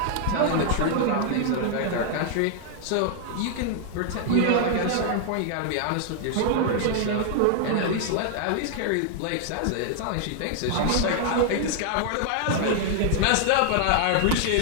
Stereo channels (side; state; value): both; different; correlation 0.00